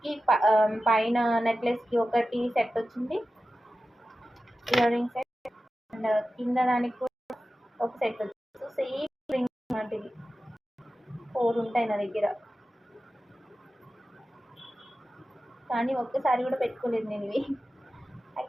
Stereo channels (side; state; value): both; normal; correlation 0.94